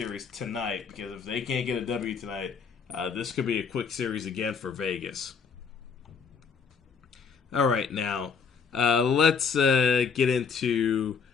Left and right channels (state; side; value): quieter; right; 6.0 dB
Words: tonight, because if they can't get a W tonight, this could be a quick series again for Vegas. All right, now let's get into